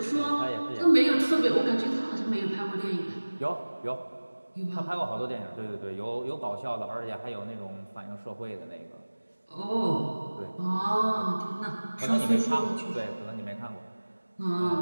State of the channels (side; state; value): both; inverted; correlation -1.00